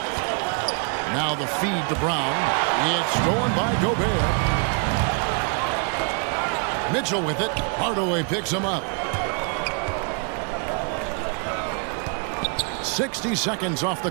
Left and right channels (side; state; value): left; quieter; 37.4 dB